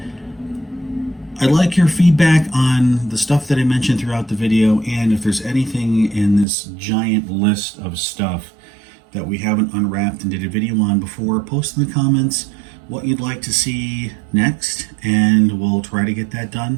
I'd like your feedback on the stuff that I mentioned throughout the video, and if there's anything in this giant list of stuff that we haven't unwrapped and did a video on before, post in the comments what you'd like to see next, and we'll try to get that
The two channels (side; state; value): left; drops out; at 6.5 s